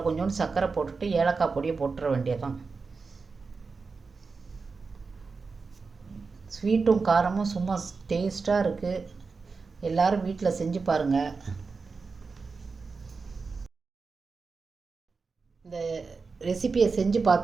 கொஞ்சோண்டு சர்க்கரை போட்டுட்டு ஏலக்காய் பொடியை போட்டுற வேண்டியதான். ஸ்வீட்டும் காரமும் சும்மா டேஸ்ட்டாக இருக்குது. எல்லோரும் வீட்டில் செஞ்சு பாருங்கள். இந்த ரெசிபியை செஞ்சு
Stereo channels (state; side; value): quieter; left; 4.6 dB